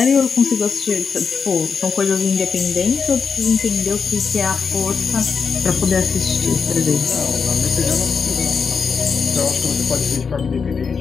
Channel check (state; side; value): quieter; right; 5.7 dB